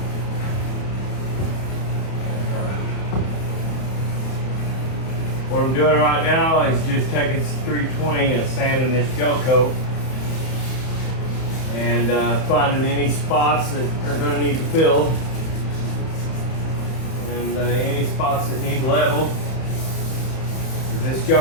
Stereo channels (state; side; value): late; right; 31 ms